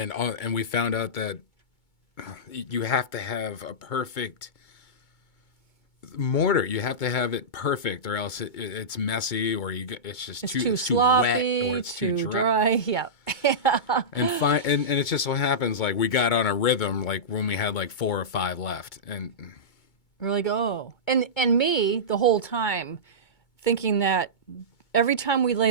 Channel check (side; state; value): right; late; 2.2 ms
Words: we found out that you have to have a perfect mortar. You have to have it perfect, or else it's messy, or it's too sloppy, wet, or it's too dry. Yeah. And it just so happens like we got on a rhythm like when we had like 4 or 5 left, and we're like, oh, and me the whole time thinking that every time we